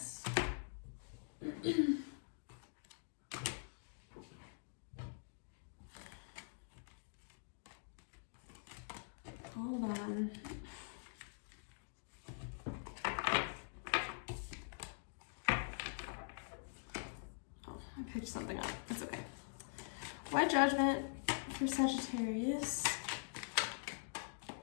Hold on. Oh, I picked something up. It's okay. Why judgment for Sagittarius?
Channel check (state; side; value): silent; right; digital silence